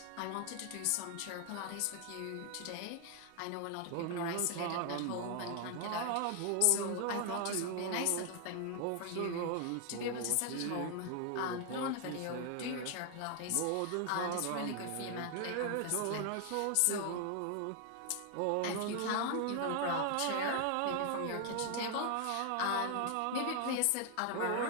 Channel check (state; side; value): different; both; correlation 0.00